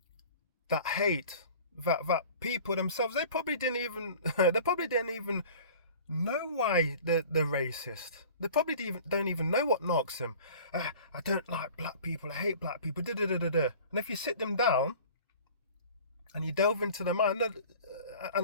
That hate, that people themselves, they probably didn't even know why they're racist. They probably don't even know what knocks them. I don't like black people. I hate black people. Da, da, da, da, da. And if you sit them down and you delve into their mind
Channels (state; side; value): inverted; both; correlation -0.44